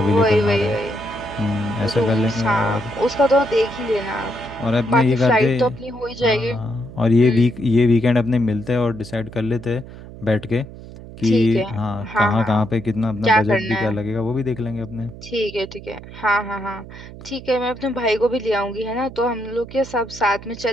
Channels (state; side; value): noise; right; hum, 15 dB below the sound